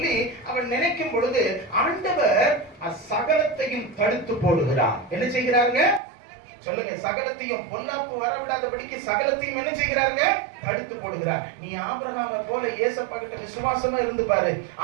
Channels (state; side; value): drops out; left; at 6.0 s